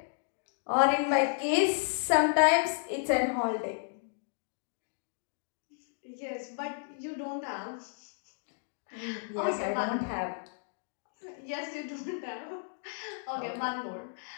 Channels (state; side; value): silent; right; digital silence